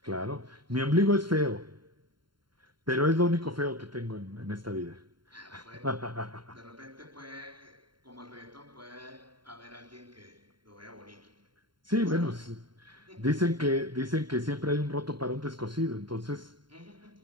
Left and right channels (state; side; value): late; left; 0.72 ms